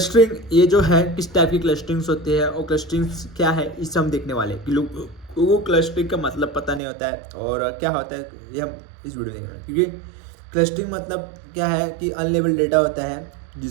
ये जो है किस टाइप की क्लस्टरिंग्स होती है और क्लस्टरिंग्स क्या है इसे हम देखने वाले हैं कि लोगों को क्लस्टरिंग का मतलब पता नहीं होता है और क्या होता है ये हम इस वीडियो में देख रहे हैं। क्योंकि क्लस्टरिंग मतलब क्या है कि अनलेबल्ड डेटा होता है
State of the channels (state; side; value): drops out; left; at 6.8 s